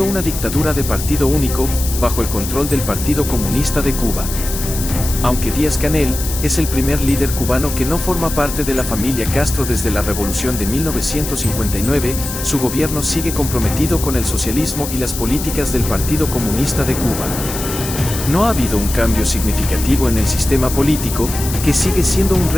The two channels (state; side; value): noise; left; hiss, 7 dB below the sound